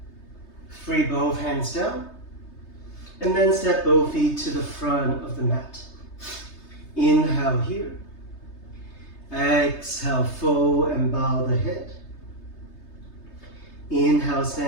Free both hands down. And then step both feet to the front of the mat. Inhale here. Exhale, fold and bow the head. Inhale,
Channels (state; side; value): late; right; 3.3 ms